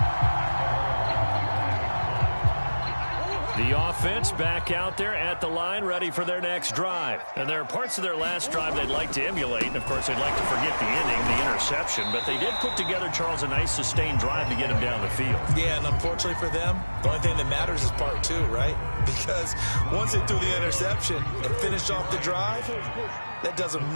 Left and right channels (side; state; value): both; inverted; correlation -1.00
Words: The offense back out there at the line, ready for their next drive. And there are parts of their last drive they'd like to emulate. And, of course, they'd like to forget the ending, the interception. But they did put together, Charles, a nice sustained drive to get him down the field. Yeah, and unfortunately for them, the only thing that matters is part 2, right? Because once they threw the interception and finished off the drive, that does them